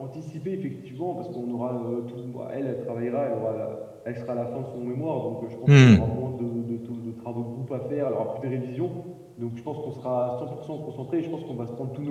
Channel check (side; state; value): both; identical; correlation 1.00